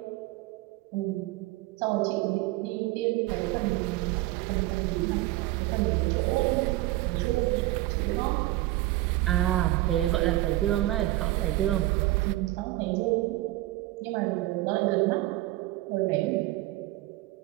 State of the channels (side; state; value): left; quieter; 17.5 dB